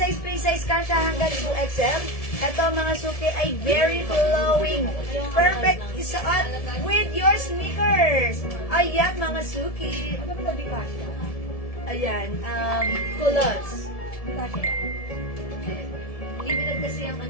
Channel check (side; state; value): right; late; 1.7 ms